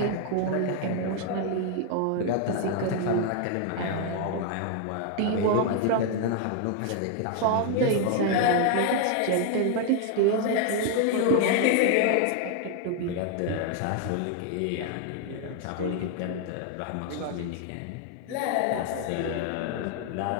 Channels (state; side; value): different; both; correlation 0.00